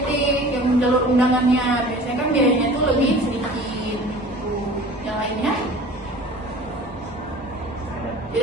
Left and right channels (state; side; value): normal; both; correlation 0.43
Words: yang jalur undangannya. Biasanya kan biayanya tuh lebih sedikit gitu. Yang lainnya